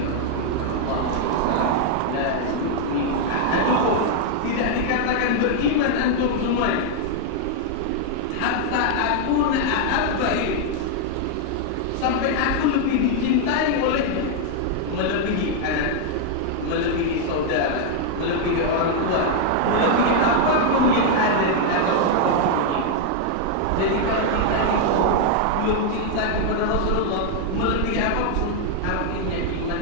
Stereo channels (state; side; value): different; both; correlation 0.00